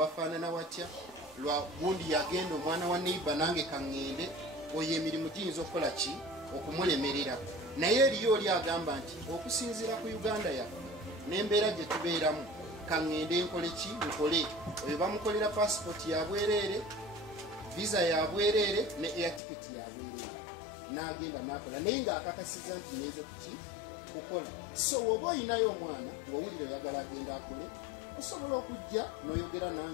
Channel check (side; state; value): right; drops out; at 19.4 s